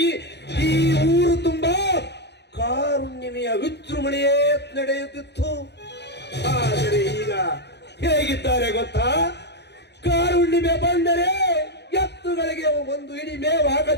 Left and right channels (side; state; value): right; late; 0.50 ms